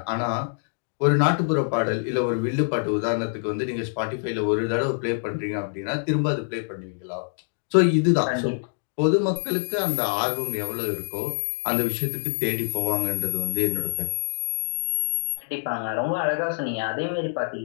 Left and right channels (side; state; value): right; silent; digital silence